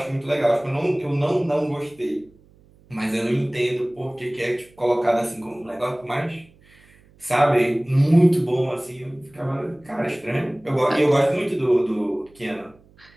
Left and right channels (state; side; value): noise; right; hum, 29 dB below the sound